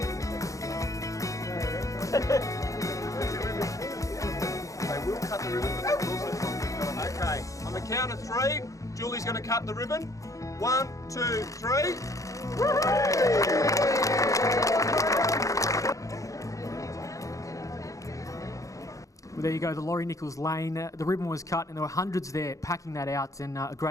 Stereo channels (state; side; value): late; right; 0.16 ms